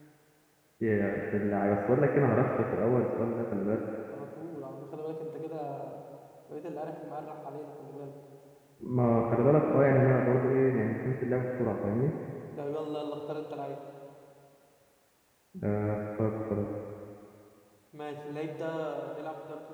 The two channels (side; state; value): both; identical; correlation 1.00